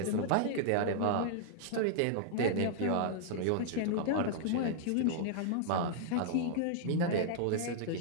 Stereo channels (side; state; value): both; different; correlation -0.01